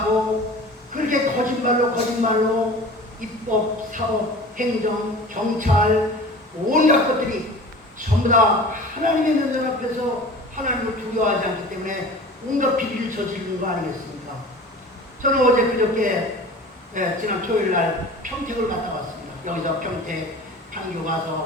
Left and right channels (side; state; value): both; normal; correlation 0.40